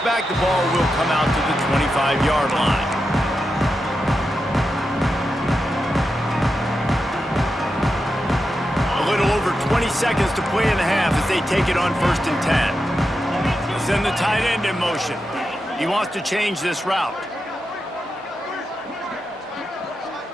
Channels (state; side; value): normal; both; correlation 0.88